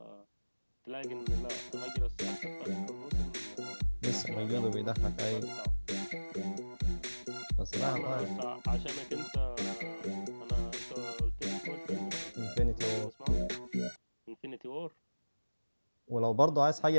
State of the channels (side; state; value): both; inverted; correlation -1.00